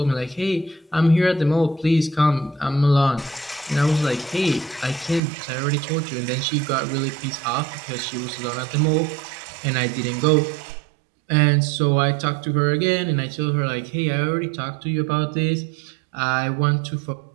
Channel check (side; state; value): left; drops out; at 5.2 s